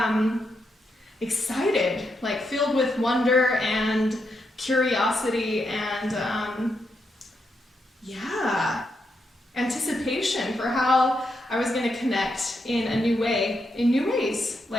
excited, filled with wonder and curiosity and anticipation for how I was going to connect in a new way, in new ways.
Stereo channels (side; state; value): both; normal; correlation 0.82